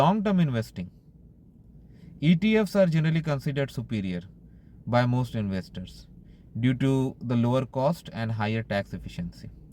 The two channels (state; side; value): identical; both; correlation 1.00